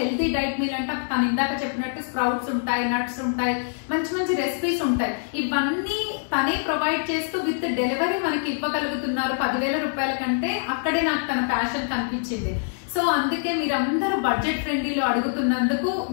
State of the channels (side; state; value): right; silent; 62 dB below the other